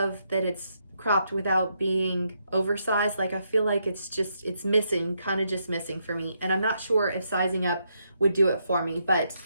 that it's cropped without being oversized. Like I feel like it's missing, kind of just missing for me. And I'm not sure if sizing up would do it for me, but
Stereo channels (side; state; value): both; inverted; correlation -0.79